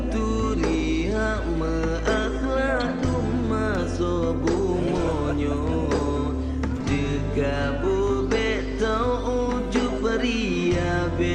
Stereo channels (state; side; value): identical; both; correlation 1.00